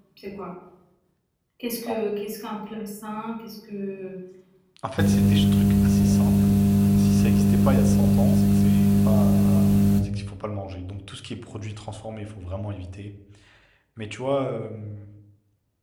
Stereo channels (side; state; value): both; identical; correlation 1.00